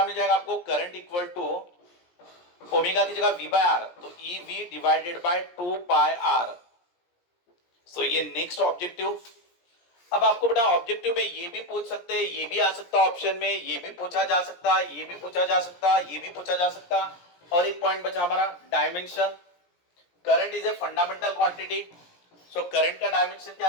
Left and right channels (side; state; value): right; late; 17 ms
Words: मिल जाएगा आपको, करंट इक्वल टू ओमेगा की जगह v बाय आर, तो E V divided by 2 pi R. So ये नेक्स्ट ऑब्जेक्टिव। अब आपको बेटा ऑब्जेक्टिव में ये भी पूछ सकते हैं, ये भी आ सकता ऑप्शन में, ये भी पूछा जा सकता, ये भी पूछा जा सकता, ये भी पूछा जा सकता। और एक पॉइंट बचा हमारा dimension. Current is a fundamental quantity. So current का डायमेंशन क्या